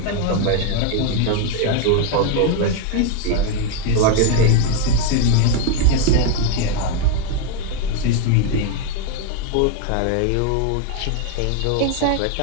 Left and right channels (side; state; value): both; different; correlation 0.01